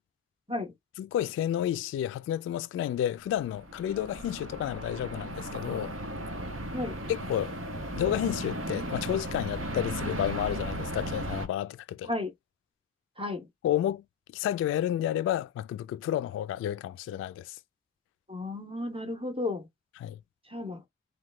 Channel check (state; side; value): quieter; right; 6.9 dB